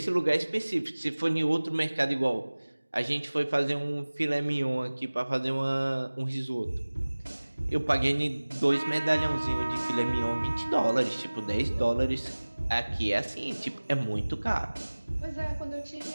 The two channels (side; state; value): both; inverted; correlation -1.00